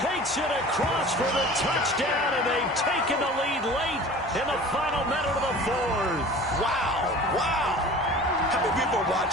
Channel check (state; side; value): normal; both; correlation 0.41